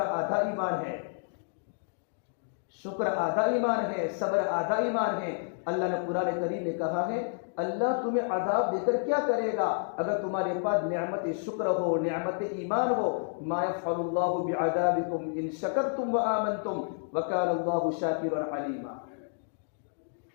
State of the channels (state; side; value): silent; right; digital silence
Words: ایمان ہے. شکر آدھا ایمان ہے، صبر آدھا ایمان ہے. اللہ نے قرآن کریم میں کہا ہے اللہ تمہیں عذاب دے کر کیا کرے گا اگر تمہارے پاس نعمت شکر ہو، نعمت ایمان ہو. ما يفعل الله بعذابكم ان شکرتم وآمنتم وكان الله شاکرا علیما.